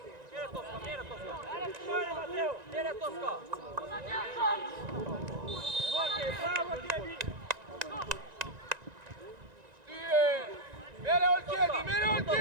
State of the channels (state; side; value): late; left; 1.9 ms